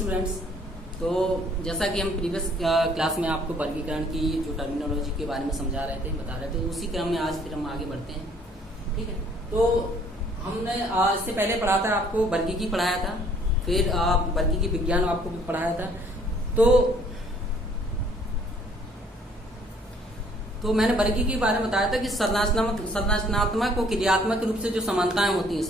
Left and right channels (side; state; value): both; normal; correlation 0.60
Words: तो जैसा कि हम प्रीवियस क्लास में आपको वर्गीकरण की जो टर्मिनोलॉजी के बारे में समझा रहे थे, बता रहे थे, उसी क्रम में आज फिर हम आगे बढ़ते हैं। ठीक है, तो हमने इससे पहले पढ़ा था, आपको वर्गीकी पढ़ाया था, फिर वर्गीकी विज्ञान आपको भी पढ़ाया था। तो मैंने वर्गीकी के बारे में बताया था कि संरचनात्मक और क्रियात्मक रूप से जो समानताएं होती हैं,